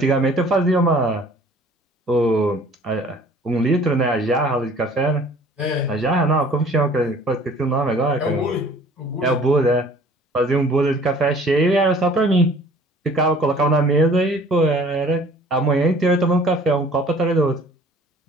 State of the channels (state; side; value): normal; both; correlation 0.51